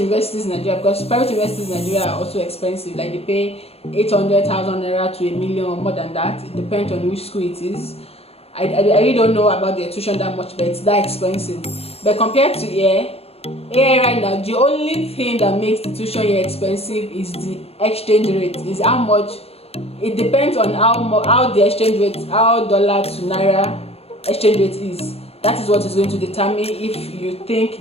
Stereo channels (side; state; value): right; late; 0.29 ms